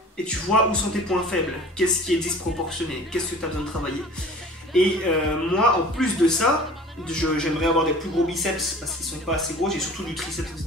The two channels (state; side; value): normal; both; correlation 0.44